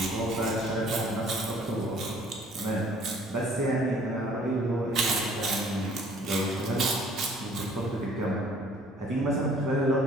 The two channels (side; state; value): both; normal; correlation 0.56